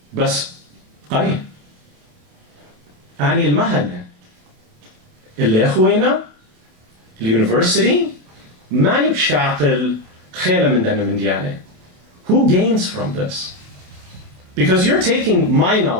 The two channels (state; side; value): late; left; 28 ms